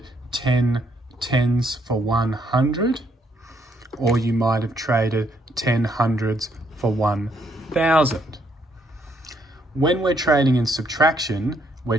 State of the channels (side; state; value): both; normal; correlation 0.71